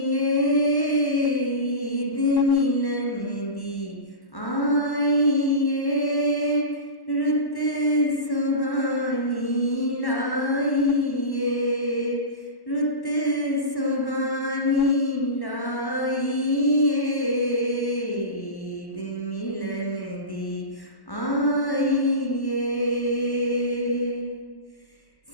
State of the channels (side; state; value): right; late; 1.1 ms